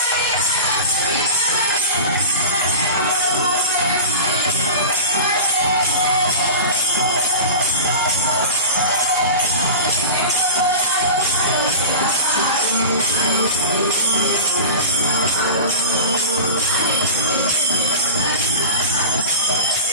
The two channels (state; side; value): inverted; both; correlation -0.31